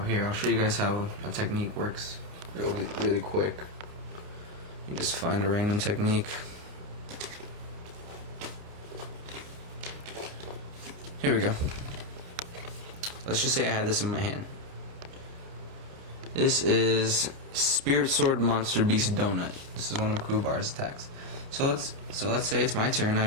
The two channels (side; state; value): left; late; 29 ms